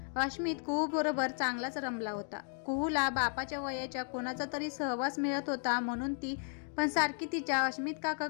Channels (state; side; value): silent; right; 55 dB below the other